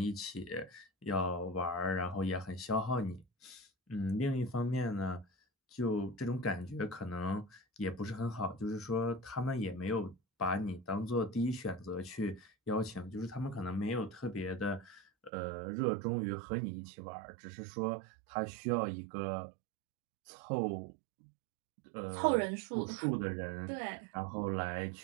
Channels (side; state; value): left; drops out; at 15.3 s